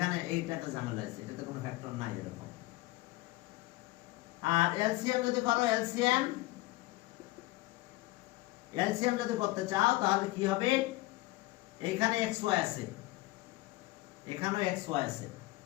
এইটাতে ঝামেলা আছে, এটাতে কোনো ফ্যাক্টর নাই এরকম। আর LCM যদি করো, LCM যদি করতে চাও তাহলে কি হবে? এখানে xy আছে, এখানেও xy আছে,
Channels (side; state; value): right; quieter; 19.5 dB